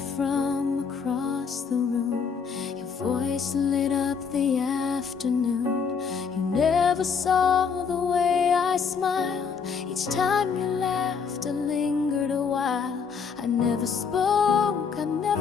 from across the room. Your voice lit up the afternoon. You never saw the way I smiled. Each time you laughed, I lingered a while. I never spoke, I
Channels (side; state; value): right; quieter; 6.0 dB